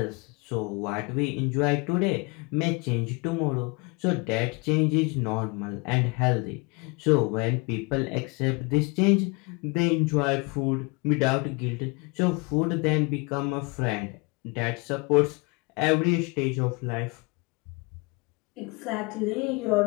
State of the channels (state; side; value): quieter; right; 28.9 dB